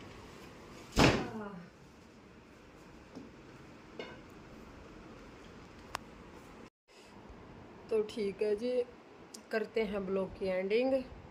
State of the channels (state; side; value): identical; both; correlation 1.00